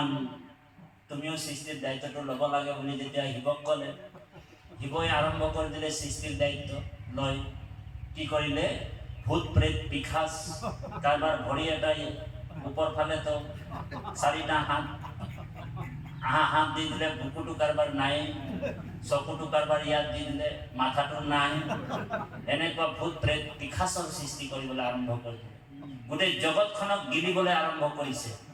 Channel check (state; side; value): identical; both; correlation 1.00